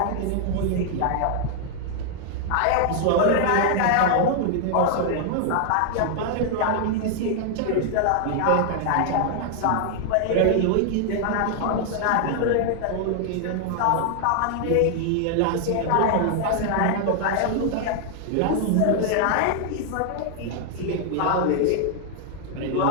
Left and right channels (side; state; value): both; different; correlation 0.00